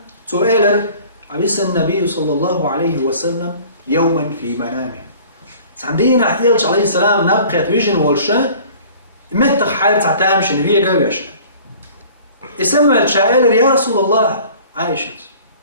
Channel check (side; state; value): both; inverted; correlation -0.48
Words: سؤال عبس النبي صلى الله عليه وسلم يوما في منامه عندنا يلش عليه السلام نبقى ويجن والشا متى حال تعتامش نبيه قويش اسمع الشائل يا رسول الله عائشة